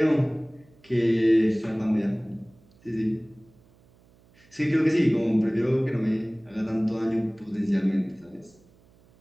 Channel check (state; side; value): noise; right; hum, 30 dB below the sound